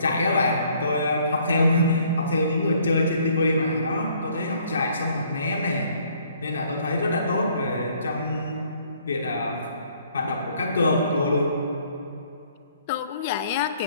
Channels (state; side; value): inverted; both; correlation -0.62